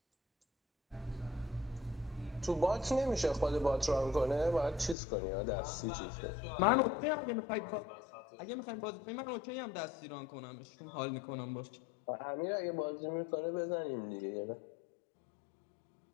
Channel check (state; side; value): drops out; right; at 5.0 s